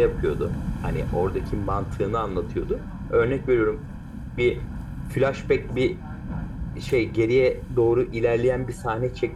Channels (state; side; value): identical; both; correlation 1.00